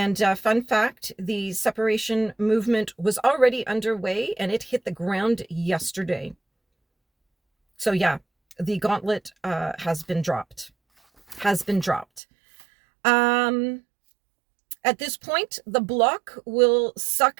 fun fact, the separation movement was already underway, and it hit the ground yesterday. So yeah. The gauntlet has been dropped. At this point, the Bloc will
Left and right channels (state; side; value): drops out; left; at 12.2 s